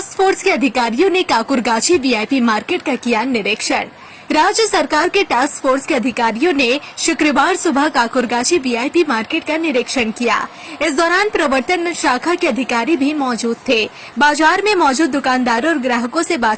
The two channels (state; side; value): identical; both; correlation 1.00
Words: फोर्स के अधिकारियों ने काकुरगाछी वीआईपी मार्केट का किया निरीक्षण। राज्य सरकार के टास्क फोर्स के अधिकारियों ने शुक्रवार सुबह काकुरगाछी वीआईपी मार्केट का निरीक्षण किया। इस दौरान प्रवर्तन शाखा के अधिकारी भी मौजूद थे। बाजार में मौजूद दुकानदारों और ग्राहकों से